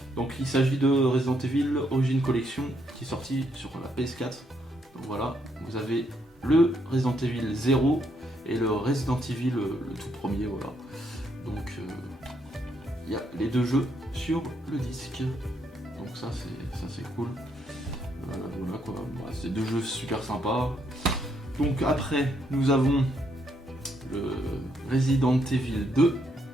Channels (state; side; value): normal; both; correlation 0.75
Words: Donc il s'agit de Resident Evil Origin Collection qui est sorti sur la PS4. Donc voilà, vous avez le Resident Evil 0 et le Resident Evil le tout premier, voilà. Donc il y a les deux jeux sur le disque. Donc ça c'est cool. Voilà quoi, c'est deux jeux super sympas. Donc après nous avons le Resident Evil 2